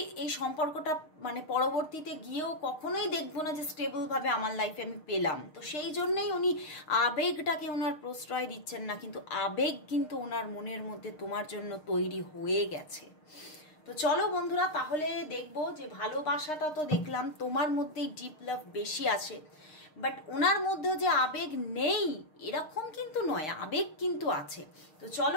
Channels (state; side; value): late; right; 6.5 ms